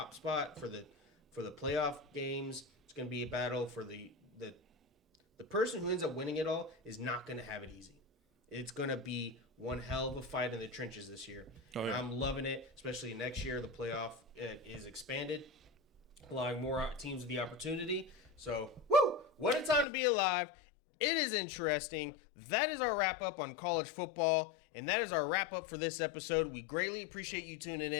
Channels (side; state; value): right; drops out; at 19.9 s